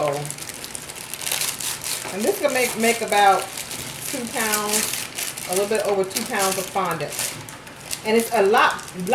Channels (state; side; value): identical; both; correlation 1.00